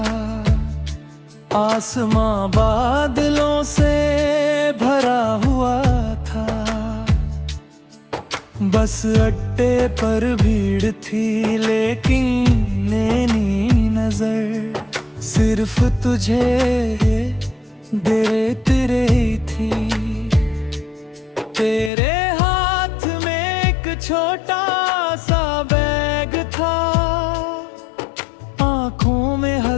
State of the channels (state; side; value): drops out; right; at 21.9 s